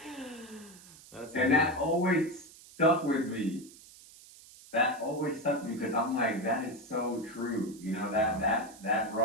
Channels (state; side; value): noise; right; hiss, 21 dB below the sound